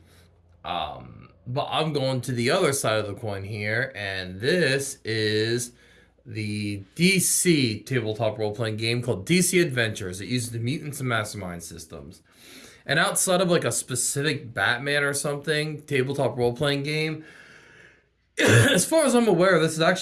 But I'm going to the other side of the coin here, and this is the DC tabletop role-playing game called DC Adventures. It uses the Mutants and Masterminds systems. And outside of like a specific Batman or something tabletop role-playing game, as far as I'm aware, this is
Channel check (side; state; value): both; identical; correlation 1.00